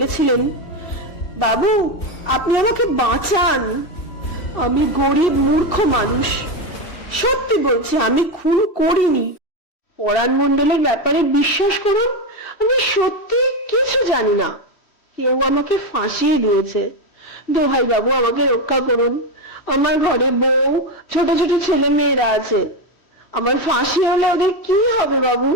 বাবু, আপনি আমাকে বাঁচান, আমি গরিব মূর্খ মানুষ, সত্যি বলছি আমি খুন করিনি। পরাণ মণ্ডলের ব্যাপারে বিশ্বাস করুন, আমি সত্যি কিছু জানি না, কেউ আমাকে ফাঁসিয়ে দিয়েছে। দোহাই বাবু, আমাকে রক্ষা করুন, আমার ঘরে বউ, ছোট ছোট ছেলে মেয়েরা আছে, আমার ফাঁসি হলে ওদের কি হবে বাবু?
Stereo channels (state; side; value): late; right; 3.1 ms